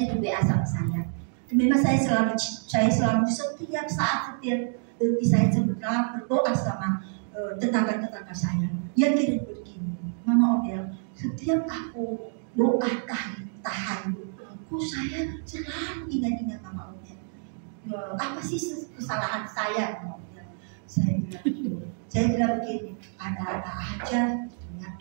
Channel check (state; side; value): silent; left; 60 dB below the other